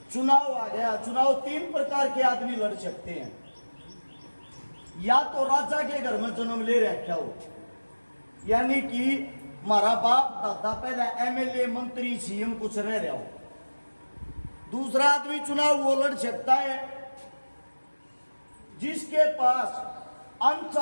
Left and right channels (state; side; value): inverted; both; correlation -1.00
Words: चुनाव आ गया। चुनाव तीन प्रकार के आदमी लड़ सकते हैं। या तो राजा के घर में जन्म ले रखा हो, यानी कि हमारा बाप दादा पहले एमएलए, मंत्री, सीएम कुछ रह रहा हो। दूसरा आदमी चुनाव वो लड़ सकता है जिसके पास